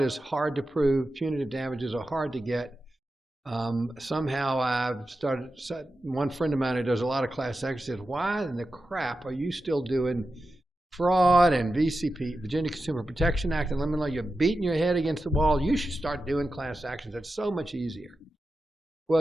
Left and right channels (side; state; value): both; normal; correlation 0.92